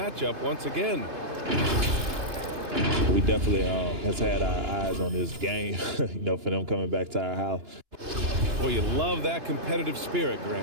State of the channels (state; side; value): late; left; 2.9 ms